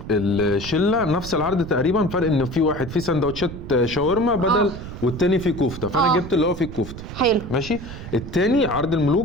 الشله نفس العرض تقريبا، فرق ان في واحد فيه سندوتشات شاورما بدل والتاني فيه كفته، فانا جبت اللي هو فيه الكفته. حلو ماشي. التاني عرض الملوك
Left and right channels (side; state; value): right; noise; rumble, 11 dB below the sound